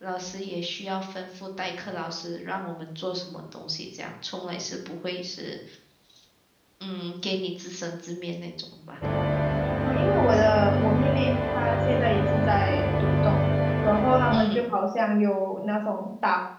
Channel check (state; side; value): identical; both; correlation 1.00